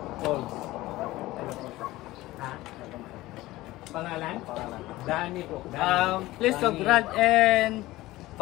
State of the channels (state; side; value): quieter; right; 17.8 dB